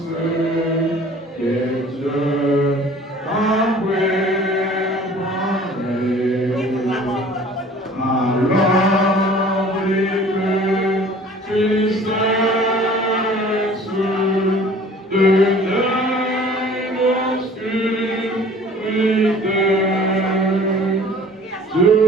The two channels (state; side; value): normal; both; correlation 0.49